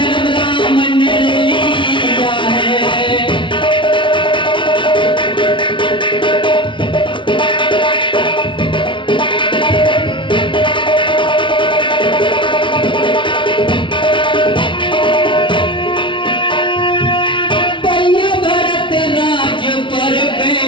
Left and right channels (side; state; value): right; late; 0.24 ms